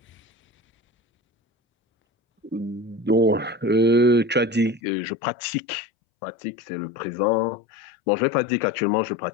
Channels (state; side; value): drops out; right; at 4.8 s